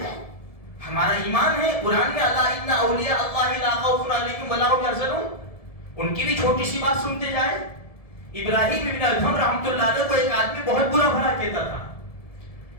ہمارا ایمان ہے. قرآن میں اللہ ان اولیاء اللہ لا خوف علیہم ولا هم یحزنون، ان کی بھی چھوٹی سی بات سنتے جائے. ابراہیم ابن ادھم رحمۃ اللہ علیہ کو ایک آدمی بہت برا بھلا کہتا تھا.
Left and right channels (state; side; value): late; right; 1.7 ms